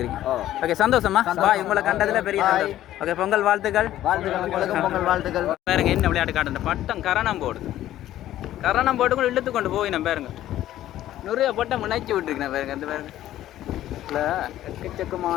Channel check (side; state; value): right; quieter; 13.2 dB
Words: ஓகே, சந்தோஷமா உங்களை கண்டதுல பெரிய ஓகே. பொங்கல் வாழ்த்துக்கள். பொங்கல் வாழ்த்துக்கள். பாருங்க என்ன விளையாட்டு காட்டு பட்டம் கரணம் போடுது. கரணம் போட்டு கூட இழுத்து கொண்டு போய் நம்ம பாருங்க நிறைய பட்டம் இணைச்சி விட்டுருக்கேன் பாருங்க. அந்த பாருங்க